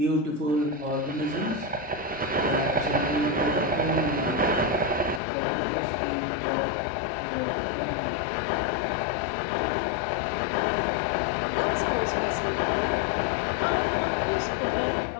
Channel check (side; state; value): right; drops out; at 5.2 s